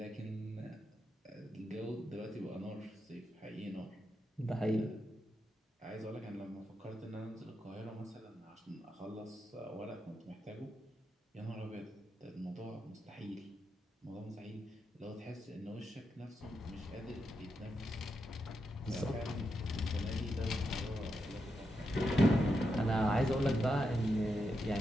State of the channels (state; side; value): normal; both; correlation 0.85